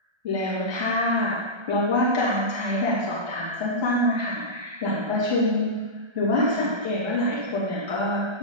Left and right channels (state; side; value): late; left; 1.3 ms